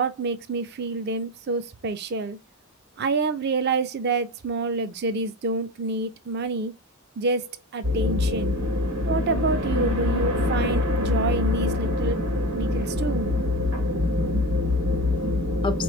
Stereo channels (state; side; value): normal; both; correlation 0.24